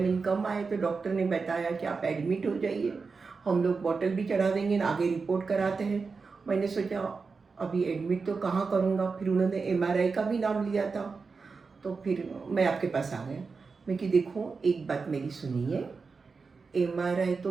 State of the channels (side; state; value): left; quieter; 4.7 dB